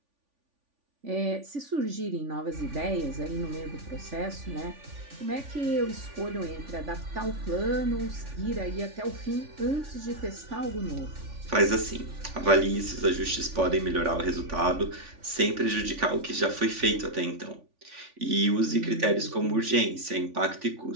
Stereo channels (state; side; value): late; left; 3.5 ms